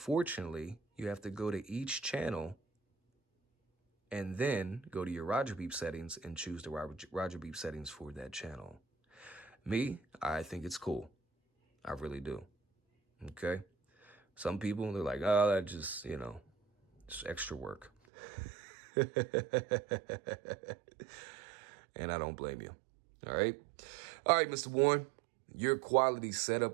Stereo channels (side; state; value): left; drops out; at 17.9 s